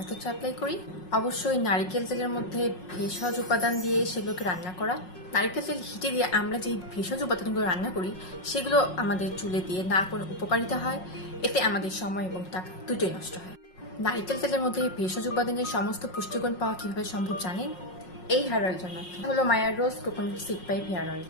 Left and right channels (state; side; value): late; right; 5.5 ms